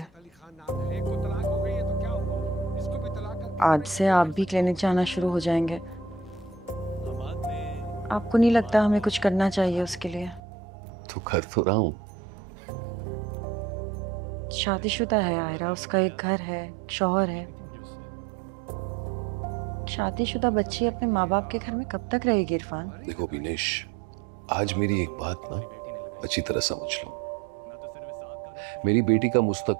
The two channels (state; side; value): drops out; left; at 10.4 s